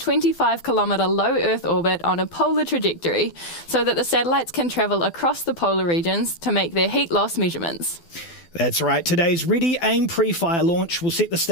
low Earth orbit on a polar trajectory so that the satellites can travel across the polar regions to make their heat loss measurements. That's right. Today's Ready, Aim, PREFIRE launch will set the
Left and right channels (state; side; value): late; right; 12 ms